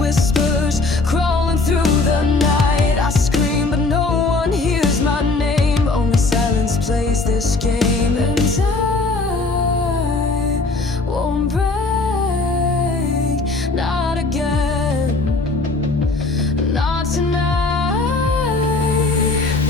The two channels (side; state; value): right; quieter; 3.5 dB